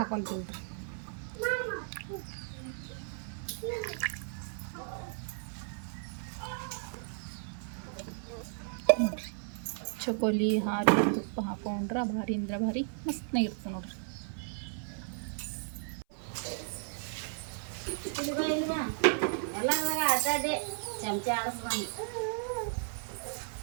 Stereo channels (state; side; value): silent; left; 55 dB below the other